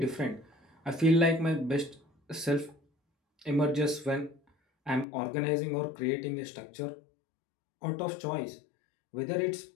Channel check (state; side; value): drops out; right; at 5.1 s